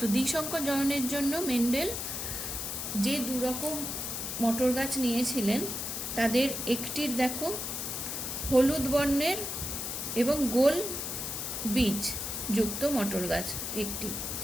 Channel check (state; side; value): noise; left; hiss, 4 dB below the sound